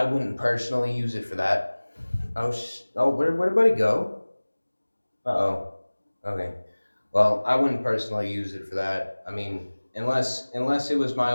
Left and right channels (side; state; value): both; inverted; correlation -1.00